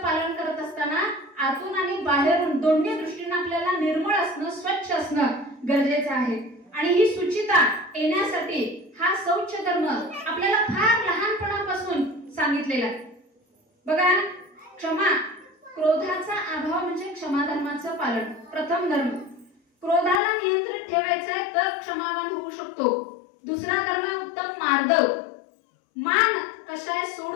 करत असताना आतून आणि बाहेरून दोन्ही दृष्टीने आपल्याला निर्मळ असणं, स्वच्छ असणं गरजेचं आहे. आणि ही शुचिता येण्यासाठी हा शौच धर्म आपल्याला फार लहानपणापासून सांगितलेला आहे. बघा, क्षमा, क्रोधाचा अभाव म्हणजे क्षमा धर्माचं पालन. प्रथम धर्म, क्रोधाला नियंत्रित ठेवायचं आहे तर क्षमावान होऊ शकतो. दुसरा धर्म उत्तम मार्दव. मान कशाय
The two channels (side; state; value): right; drops out; at 20.2 s